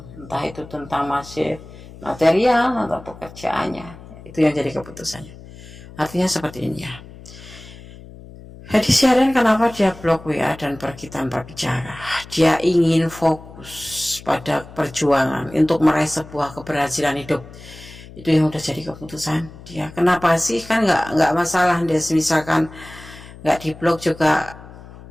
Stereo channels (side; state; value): left; noise; hum, 18 dB below the sound